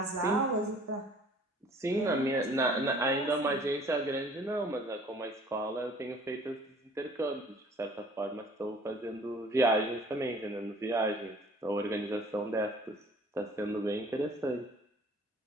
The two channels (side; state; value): both; normal; correlation 0.52